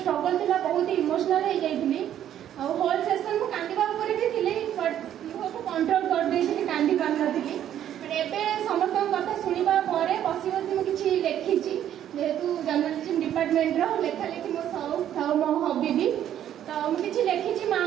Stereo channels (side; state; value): left; quieter; 10.8 dB